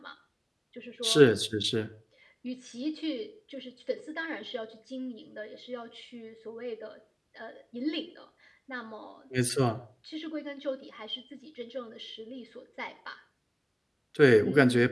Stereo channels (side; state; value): both; identical; correlation 1.00